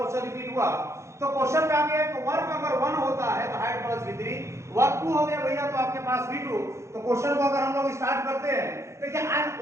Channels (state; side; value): late; left; 0.14 ms